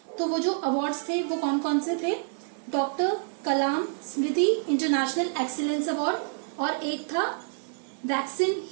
तो वो जो अवार्ड्स थे वो कौन कौन से थे, डॉक्टर कलाम स्मृति इंटरनेशनल एक्सीलेंस अवार्ड और एक था वैक्सीन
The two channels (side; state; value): left; silent; digital silence